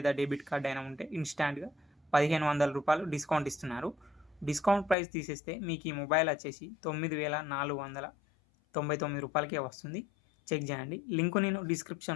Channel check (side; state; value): right; drops out; at 5.0 s